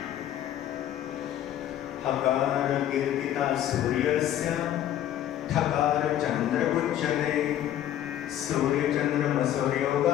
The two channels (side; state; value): right; quieter; 11.6 dB